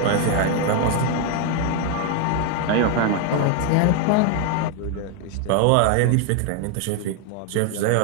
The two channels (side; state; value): both; different; correlation 0.01